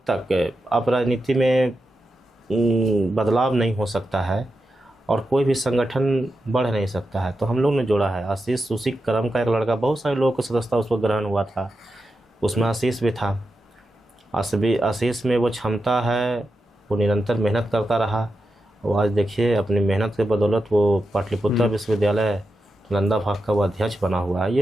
तक अब राजनीति में बदलाव नहीं हो सकता है और कोई भी संगठन बढ़ नहीं सकता है। तो हम लोग ने जोड़ा है। आशीष उसी क्रम का एक लड़का, बहुत सारे लोगों को सदस्यता उसको ग्रहण हुआ था, उसमें आशीष भी था। आशीष में वो क्षमता है, वो निरंतर मेहनत करता रहा। वो आज देखिए अपनी मेहनत के बदौलत वो पाटलिपुत्र विश्वविद्यालय नालंदा भाग का वो अध्यक्ष बना हुआ है।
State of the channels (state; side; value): normal; both; correlation 0.89